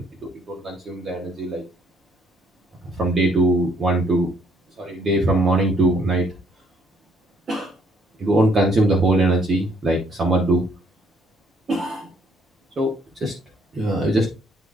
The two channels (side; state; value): both; normal; correlation 0.66